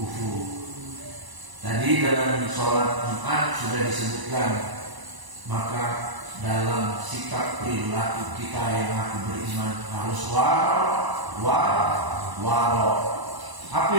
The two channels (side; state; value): left; late; 1.0 ms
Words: Tadi dalam sholat Jumat sudah disebutkan, maka dalam sikap perilaku kita yang aku beriman harus waro. Apa